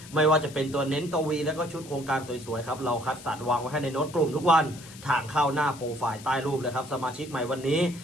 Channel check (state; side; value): noise; left; hiss, 18 dB below the sound